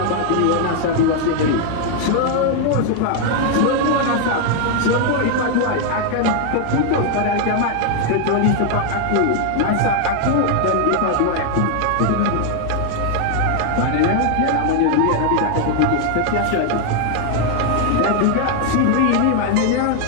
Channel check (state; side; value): different; both; correlation 0.00